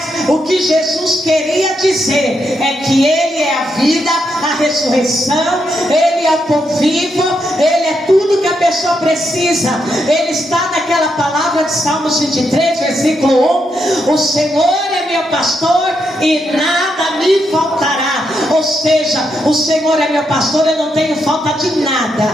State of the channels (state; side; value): normal; both; correlation 0.81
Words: o que Jesus queria dizer é que Ele é a vida, a ressurreição, Ele é o pão vivo, Ele é tudo que a pessoa precisa. Ele está naquela palavra de Salmos 23, versículo 1: o Senhor é meu pastor e nada me faltará. Ou seja, o Senhor é meu pastor, eu não tenho falta de